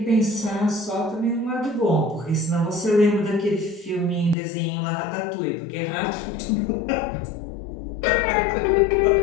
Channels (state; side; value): drops out; right; at 4.4 s